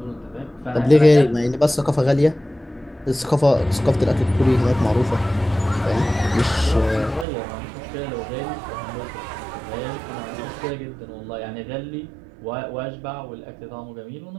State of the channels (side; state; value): left; drops out; at 7.2 s